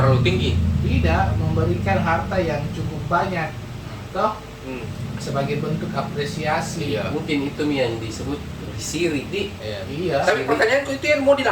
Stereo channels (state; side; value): identical; both; correlation 1.00